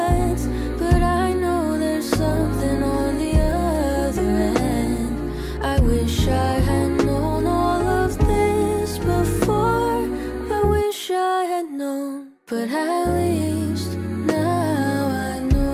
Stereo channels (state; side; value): identical; both; correlation 1.00